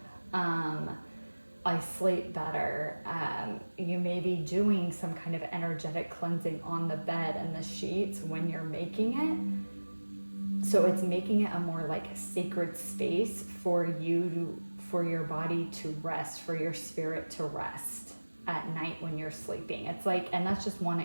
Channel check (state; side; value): inverted; both; correlation -1.00